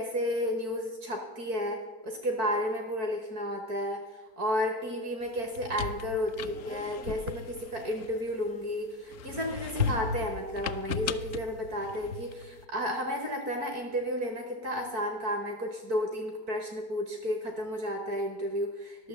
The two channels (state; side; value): late; left; 4.4 ms